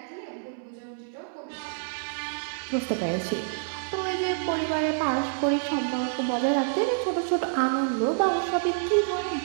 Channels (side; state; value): left; silent; 60 dB below the other